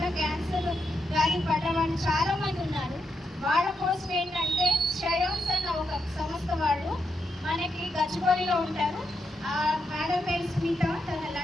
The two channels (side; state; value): both; normal; correlation 0.83